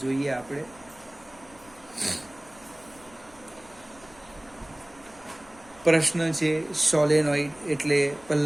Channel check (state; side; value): noise; left; rumble, 25 dB below the sound